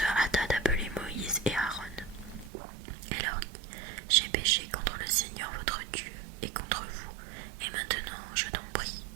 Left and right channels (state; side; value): drops out; left; at 2.5 s